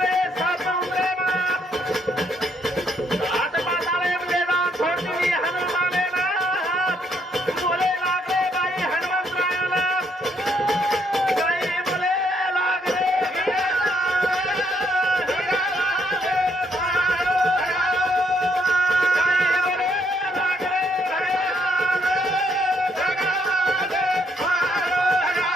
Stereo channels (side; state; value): both; normal; correlation 0.72